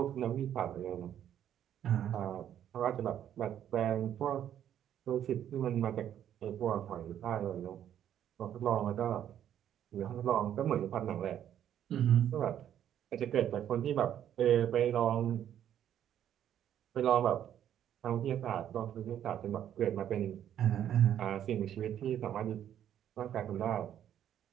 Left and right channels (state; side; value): quieter; left; 10.3 dB